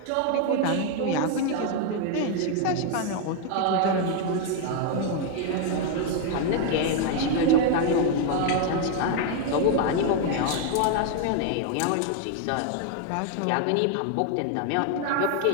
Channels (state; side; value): different; both; correlation 0.00